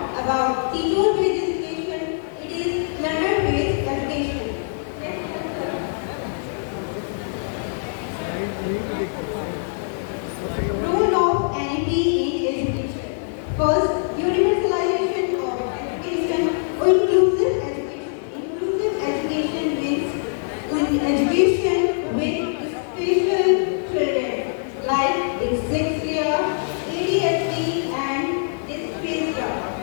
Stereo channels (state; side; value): silent; right; digital silence